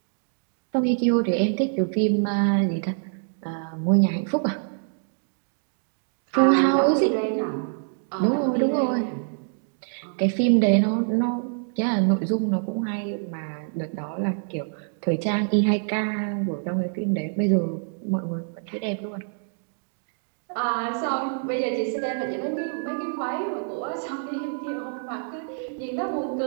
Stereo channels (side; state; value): left; silent; digital silence